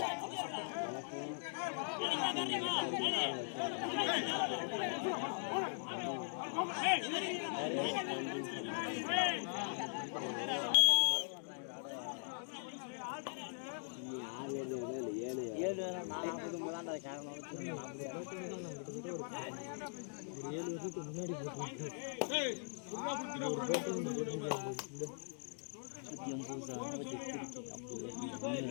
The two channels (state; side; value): silent; right; digital silence